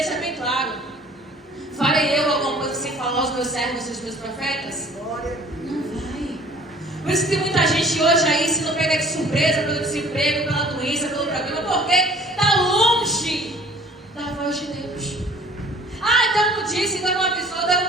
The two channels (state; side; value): normal; both; correlation 0.51